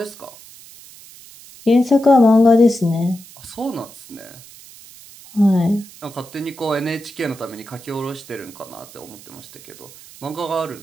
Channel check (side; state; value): right; noise; hiss, 20 dB below the sound